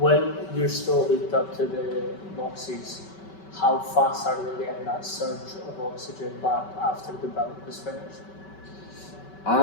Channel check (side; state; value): right; late; 5.3 ms